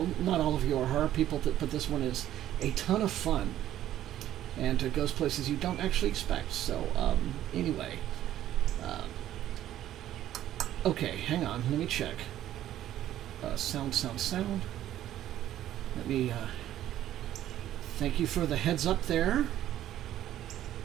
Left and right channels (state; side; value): quieter; left; 12.5 dB